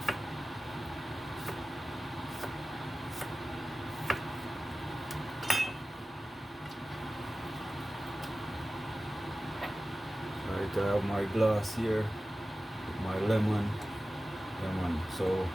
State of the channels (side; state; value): both; normal; correlation 0.96